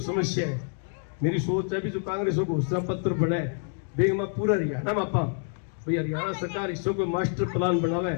समस्या है मेरी सोच है भी जो कांग्रेस को घोषणा पत्र बनाए बेग में पूरा हरियाणा में आपा भाई हरियाणा सरकार इसको कोई मास्टर प्लान बनावे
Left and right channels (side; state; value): right; silent; 60 dB below the other